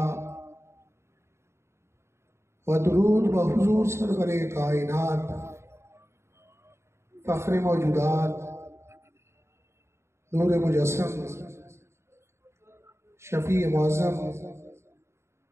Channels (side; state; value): left; late; 0.13 ms